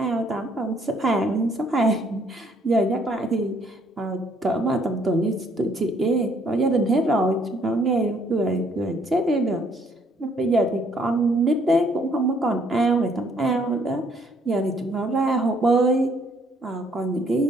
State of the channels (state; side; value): normal; both; correlation 0.65